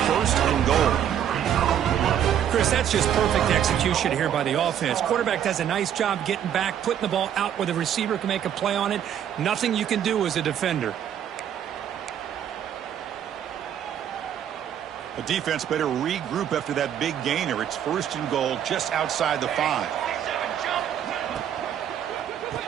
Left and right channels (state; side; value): quieter; left; 9.7 dB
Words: 1st and goal. Chris, that's just perfect execution here by the offense. Quarterback does a nice job getting back, putting the ball out where the receiver can make a play on it. Nothing you can do as a defender. The defense better regroup after that big gainer. It's 1st and goal just outside the 5.